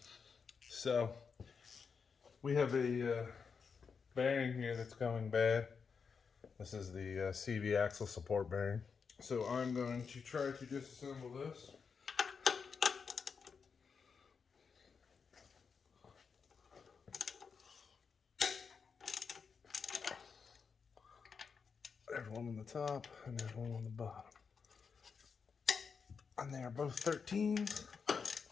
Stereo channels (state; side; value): quieter; right; 5.8 dB